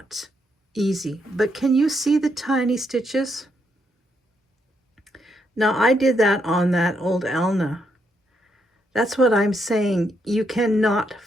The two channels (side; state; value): both; normal; correlation 0.78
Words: easy. But can you see the tiny stitches? Now I did that on that old Alna. That's what I'm saying. You cannot